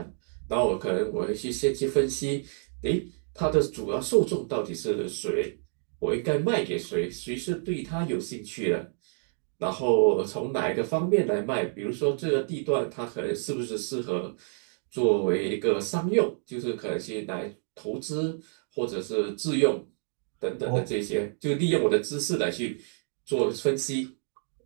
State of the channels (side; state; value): left; silent; 59 dB below the other